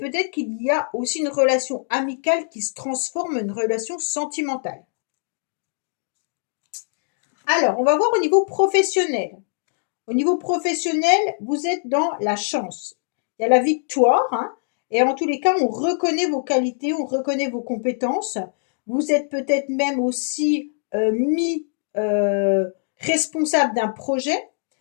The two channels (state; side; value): silent; right; digital silence